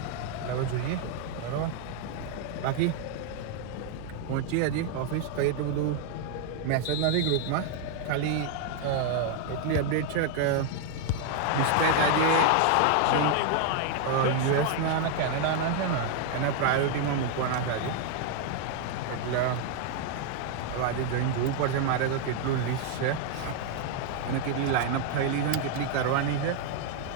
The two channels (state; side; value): different; both; correlation 0.00